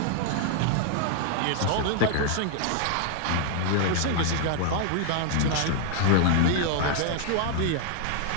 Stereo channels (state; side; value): different; both; correlation 0.00